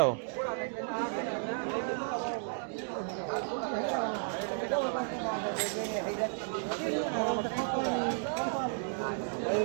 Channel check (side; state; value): left; silent; 56 dB below the other